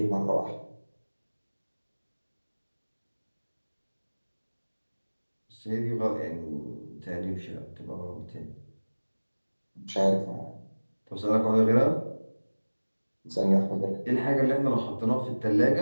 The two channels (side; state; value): both; inverted; correlation -1.00